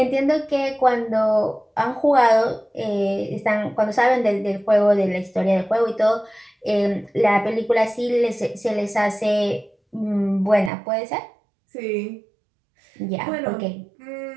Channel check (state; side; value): drops out; left; at 10.7 s